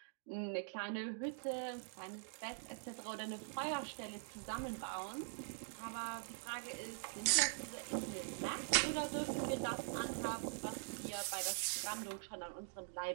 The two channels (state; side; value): silent; left; digital silence